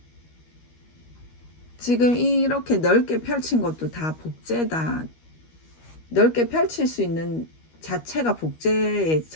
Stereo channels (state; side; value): late; right; 13 ms